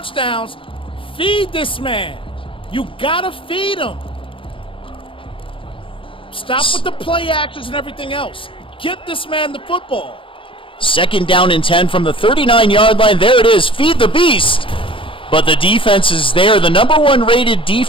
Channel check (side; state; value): right; late; 0.25 ms